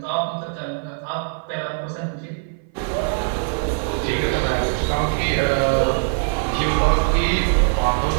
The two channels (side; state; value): left; silent; 56 dB below the other